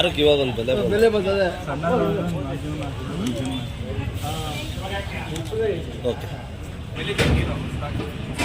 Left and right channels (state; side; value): identical; both; correlation 1.00